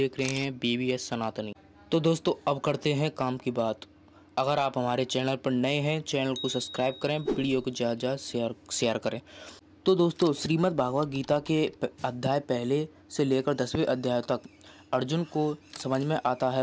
रहे हैं BBS सनातनी। तो दोस्तों, अब करते हैं काम की बात। अगर आप हमारे चैनल पर नए हैं, चैनल को सब्सक्राइब करें, वीडियो को ज़्यादा शेयर करें। तो दोस्तों, श्रीमद् भागवत गीता के अध्याय पहले से लेकर 10वें अध्याय तक अर्जुन को समझ में आता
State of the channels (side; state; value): both; identical; correlation 1.00